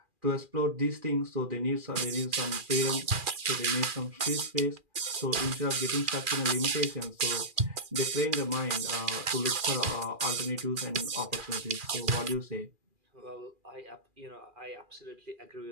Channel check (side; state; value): left; late; 2.4 ms